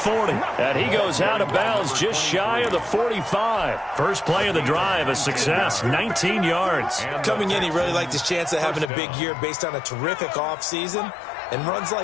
And he goes out of bounds just shy of the 45. First play of the drive, a success, 19 yards. Coming in, he really liked his chance of having a big year based on a terrific offseason. And runs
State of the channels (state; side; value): drops out; right; at 8.9 s